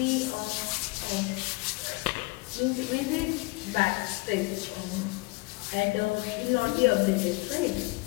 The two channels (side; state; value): right; quieter; 24.5 dB